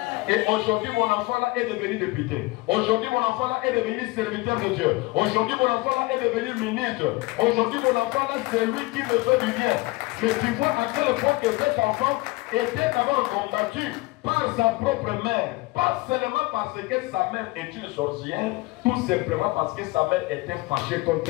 Et aujourd'hui, mon enfant là est devenu député. Aujourd'hui, mon enfant là est devenu serviteur de Dieu. Aujourd'hui, mon enfant là est devenu ministre. Aujourd'hui, mon enfant là, c'est lui qui me fait du bien. Mais tu vois à quel point que cet enfant était d'abord combattu par sa propre mère. Pas seulement parce que sa mère est une sorcière, tout simplement parce que sa mère était fâchée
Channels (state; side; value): quieter; right; 22.1 dB